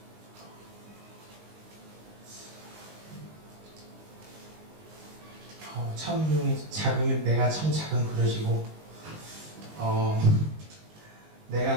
참 내가 참 작은 그릇이고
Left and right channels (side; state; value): left; late; 19 ms